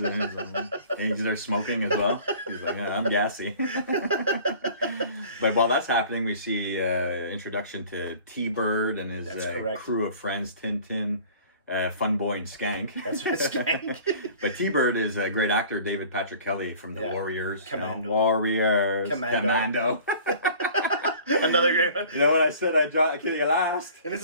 of onions. And he's there smoking as well. He's like, I'm gassy. But while that's happening, we see introduction to T-Bird and his crew of friends, Tintin, Fun Boy, and Skank. That's right, Skank. But T-Bird is a great actor, David Patrick Kelly from The Warriors. Commando. Commando. Another great one. You know what I said? I dropped Kitty last. And this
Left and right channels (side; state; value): both; inverted; correlation -0.47